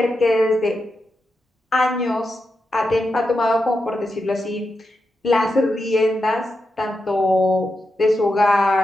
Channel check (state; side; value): normal; both; correlation 0.87